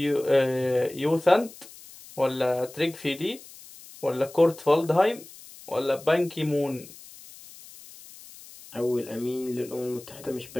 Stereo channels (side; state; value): left; noise; hiss, 19 dB below the sound